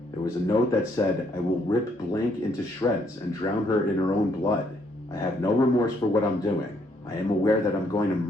there was a note that said, "I will rip Blank into shreds and drown her in her own blood. I have no remorse for what I'm doing. I am aware that I'm going to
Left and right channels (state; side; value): normal; both; correlation 0.70